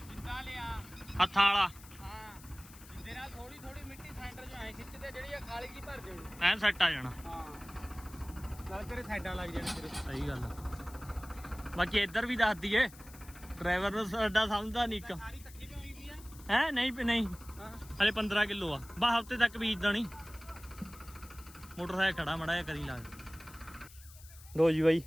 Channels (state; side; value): noise; left; hiss, 20 dB below the sound